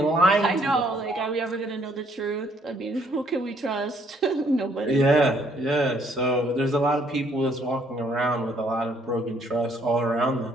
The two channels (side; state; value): both; normal; correlation 0.66